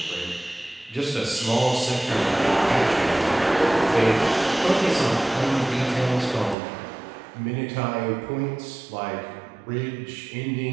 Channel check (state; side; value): drops out; left; at 6.6 s